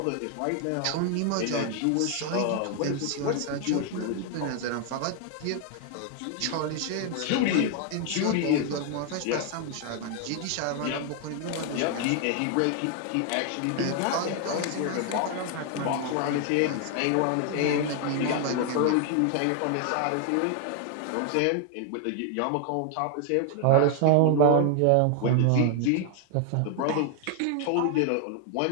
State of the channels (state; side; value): different; both; correlation 0.00